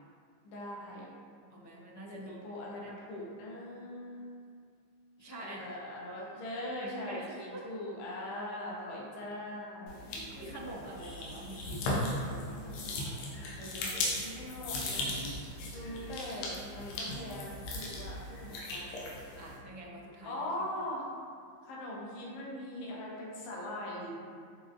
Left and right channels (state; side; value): late; right; 15 ms